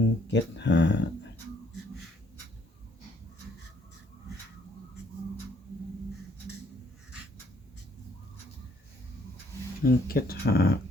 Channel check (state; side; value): normal; both; correlation 0.66